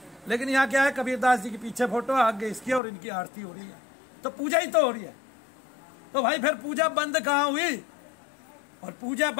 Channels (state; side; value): drops out; right; at 2.8 s